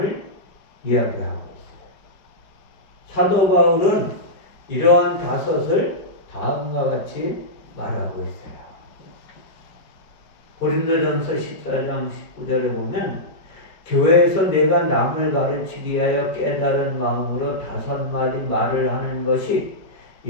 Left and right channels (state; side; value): late; right; 5.1 ms